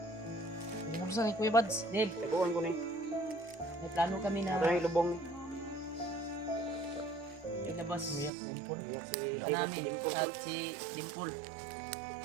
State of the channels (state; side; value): drops out; left; at 8.3 s